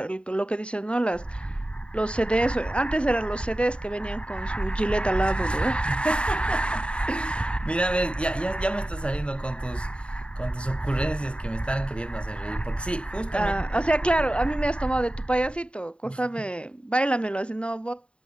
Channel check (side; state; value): right; late; 0.056 ms